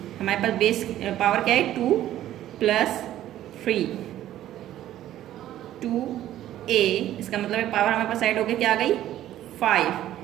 हमारे पास बेस पावर क्या है 2 प्लस 3, 2a इसका मतलब है पावर हमारे पास ऐड होके क्या आ गई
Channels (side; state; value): left; quieter; 12.9 dB